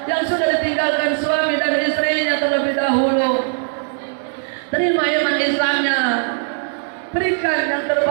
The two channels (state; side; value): silent; left; digital silence